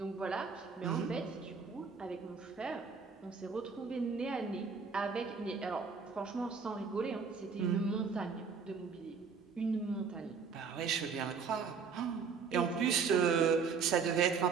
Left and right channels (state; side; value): quieter; left; 5.5 dB